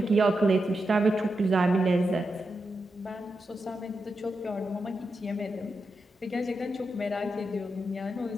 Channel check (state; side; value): normal; both; correlation 0.87